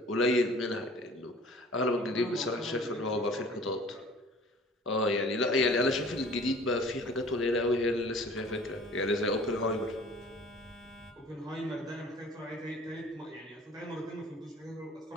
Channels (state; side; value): normal; both; correlation 0.48